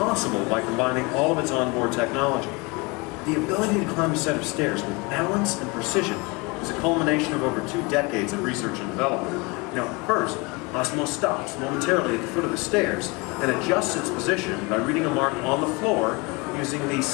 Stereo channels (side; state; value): right; quieter; 26.7 dB